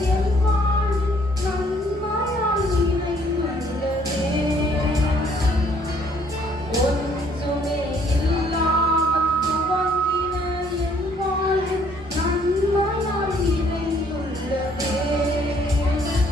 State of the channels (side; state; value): both; normal; correlation 0.63